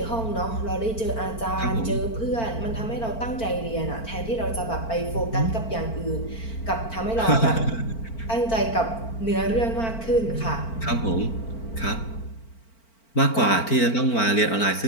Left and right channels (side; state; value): right; late; 4.4 ms